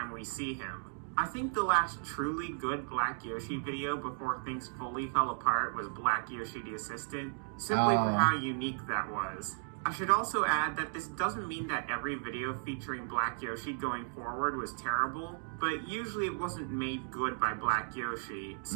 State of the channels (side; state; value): left; silent; 55 dB below the other